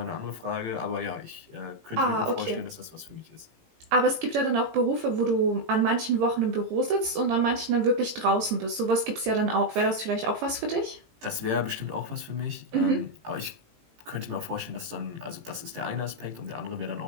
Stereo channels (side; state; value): left; late; 18 ms